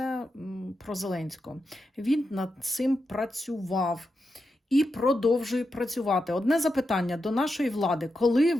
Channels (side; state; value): both; normal; correlation 0.87